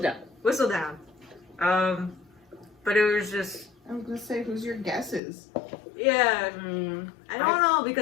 Whistledown. But it was just, I was gonna say, who's your guesses? yeah. I don't know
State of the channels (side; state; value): right; drops out; at 5.2 s